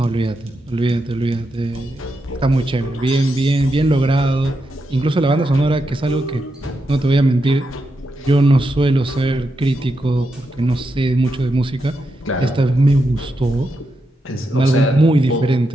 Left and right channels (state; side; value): normal; both; correlation 0.85